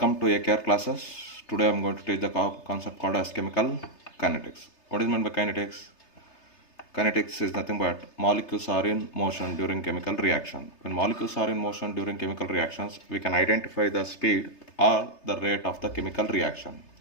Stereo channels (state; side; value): late; right; 3.3 ms